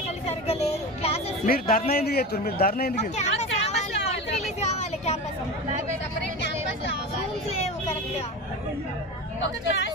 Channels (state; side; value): normal; both; correlation 0.27